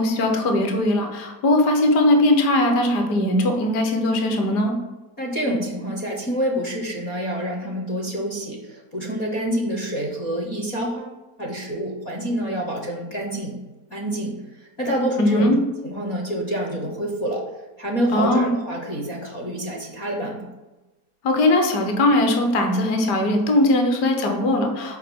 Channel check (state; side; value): late; right; 4.3 ms